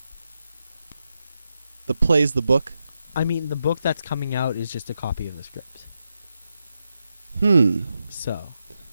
The play's the book? I mean, the book that's coming out is just a copy of the script. So.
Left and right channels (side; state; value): both; inverted; correlation -0.86